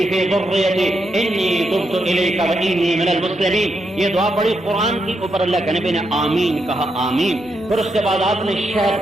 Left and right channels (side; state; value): both; normal; correlation 0.82